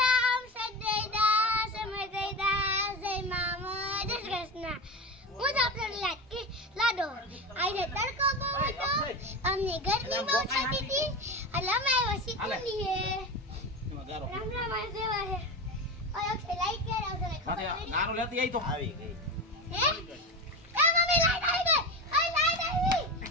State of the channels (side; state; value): both; normal; correlation 0.23